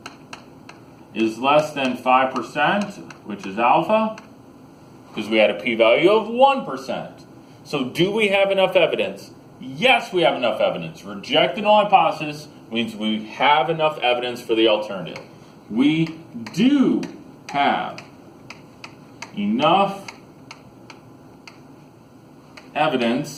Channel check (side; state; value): both; identical; correlation 1.00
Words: is less than 5%, which is alpha, because we had a p-value of 1%. So do we have enough evidence? Yes, we have enough evidence. Reject the null hypothesis means we have enough evidence for the alternative. We do have enough